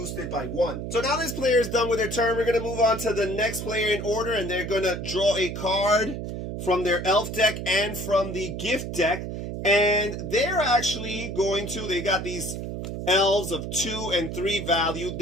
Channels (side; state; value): right; noise; hum, 6 dB below the sound